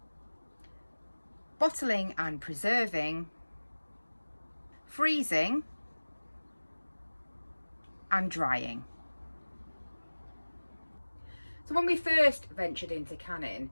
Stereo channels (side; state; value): both; inverted; correlation -1.00